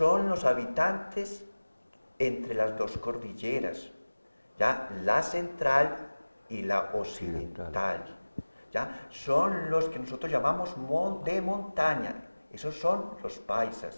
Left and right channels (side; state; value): both; inverted; correlation -1.00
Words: los habitantes entre las dos cordilleras, ¿ya? La central y la occidental. ¿Ya? Son los que nosotros llamamos de montaña, esos son los